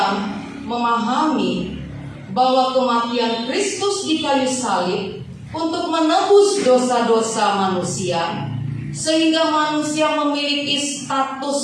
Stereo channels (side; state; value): both; identical; correlation 1.00